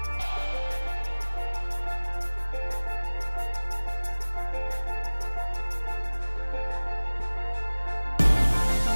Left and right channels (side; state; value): both; inverted; correlation -1.00